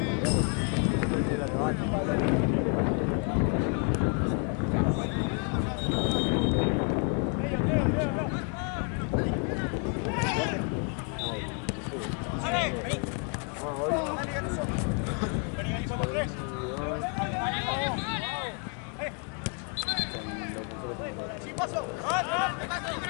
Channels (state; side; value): quieter; right; 38.9 dB